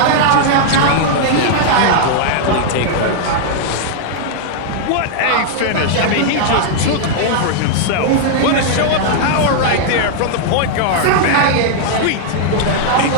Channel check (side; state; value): both; different; correlation -0.01